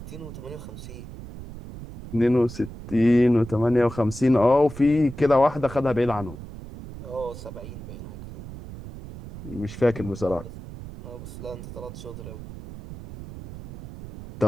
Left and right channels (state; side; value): noise; right; rumble, 12 dB below the sound